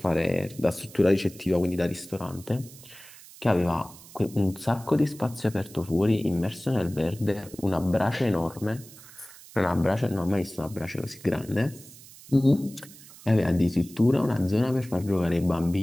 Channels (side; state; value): right; noise; hiss, 20 dB below the sound